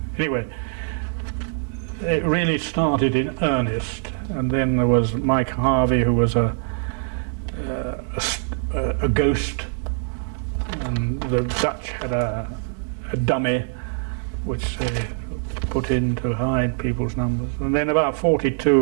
Anyway, it really started in earnest, and then there was Mike Harvey, who was a ghost, and the Dutch had a dummy which they put in to hide people's numbers. And then about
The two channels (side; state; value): left; silent; 55 dB below the other